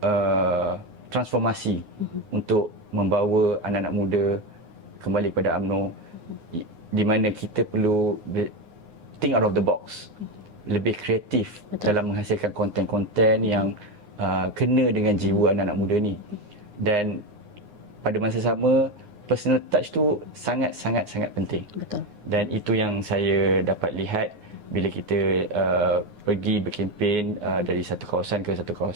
transformasi untuk membawa anak-anak muda kembali kepada UMNO, di mana kita perlu think out of the box, lebih kreatif dalam menghasilkan konten-konten yang kena dengan jiwa anak-anak muda ni. Dan pada masa sama, personal touch tu sangat-sangat penting. Betul. Dan itu yang saya dapat lihat bila kita pergi berkempen dari satu kawasan ke satu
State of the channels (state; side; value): late; left; 9.6 ms